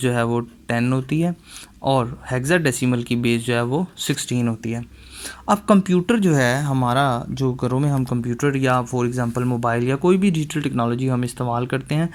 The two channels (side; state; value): both; identical; correlation 1.00